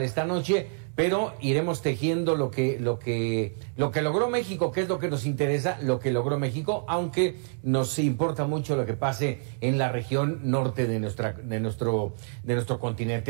esta noche, pero iremos tejiendo lo que logró México, que es lo que nos interesa, lo que logró México, aunque nos importa mucho lo que pase en la región norte de nuestro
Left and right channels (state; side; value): silent; left; digital silence